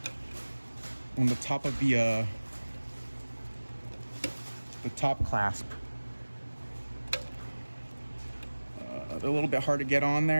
of the top clasp. They're a little bit hard to get on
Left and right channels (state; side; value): inverted; both; correlation -1.00